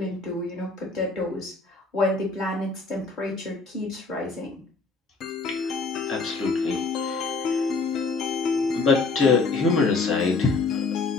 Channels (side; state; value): right; quieter; 3.9 dB